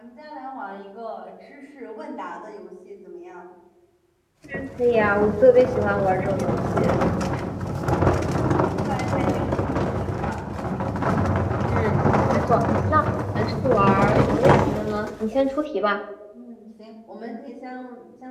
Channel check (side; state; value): both; identical; correlation 1.00